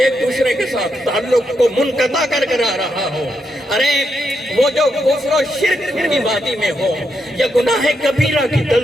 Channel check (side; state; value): both; normal; correlation 0.82